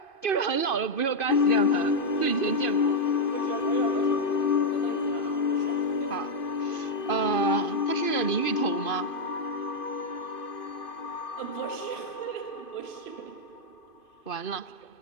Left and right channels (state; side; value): late; right; 2.5 ms